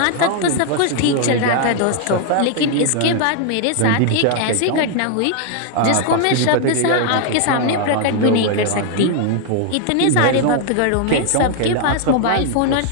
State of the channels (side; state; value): both; different; correlation 0.00